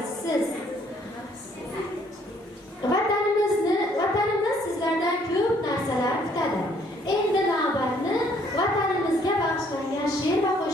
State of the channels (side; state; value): both; normal; correlation 0.64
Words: Vatanimiz sizlardan ko'p narsalar kutadi. Endi navbatni vatanimizga bag'ishlangan she'r va